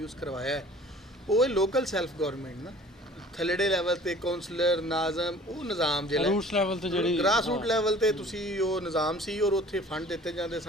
ਕਰਵਾਇਆ ਹੈ। ਉਹ ਲੋਕਲ ਸੈਲਫ ਗੌਰਮੈਂਟ ਨਾ ਥੱਲੜੇ ਲੈਵਲ 'ਤੇ ਕੌਂਸਲਰ ਨਾਜ਼ਮ ਉਹ ਨਿਜ਼ਾਮ ਜਿਹੜਾ ਰੂਟਸ ਲੈਵਲ 'ਤੇ ਜਿਹੜੀ ਗ੍ਰਾਸ ਰੂਟ ਲੈਵਲ 'ਤੇ ਤੁਸੀਂ ਉਹ ਨਿਜ਼ਾਮ ਸੀ, ਔਰ ਉੱਥੇ ਫੰਡ ਦਿੱਤੇ ਜਾਂਦੇ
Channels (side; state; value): both; normal; correlation 0.48